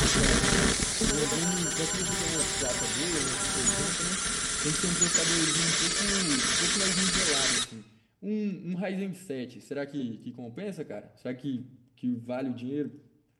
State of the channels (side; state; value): both; identical; correlation 1.00